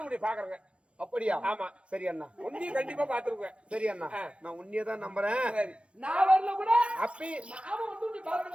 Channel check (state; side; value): late; left; 0.059 ms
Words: உடைய பாக்குறேங்க. அப்படியா? ஆமா. சரி அண்ணா, உன்னையும் கண்டிப்பா பாத்துருவேன். சரி அண்ணா, நான் உன்னையே தான் நம்புறேன். நான் வரல கூட அப்பி நாம வந்து நீ